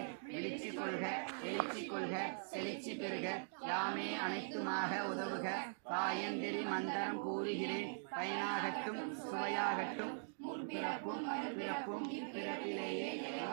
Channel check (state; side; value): silent; left; digital silence